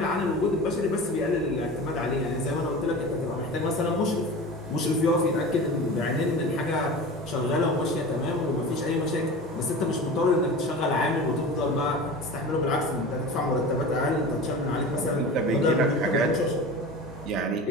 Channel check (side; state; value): both; normal; correlation 0.33